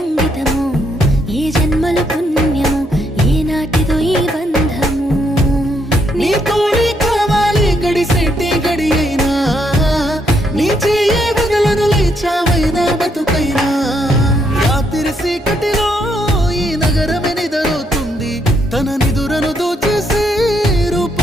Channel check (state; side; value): normal; both; correlation 0.75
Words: ఏ జన్మల పుణ్యము ఏ నాటిదో ఈ బంధము నీ తోడే కావాలి గడిసేటి గడి అయినా నీ చెయ్యే వదలను లేచావైనా బతుకైనా రాత్రి సీకటిలో ఈ నగరమే నిదరవుతుంది తన నిదురను దోచేసే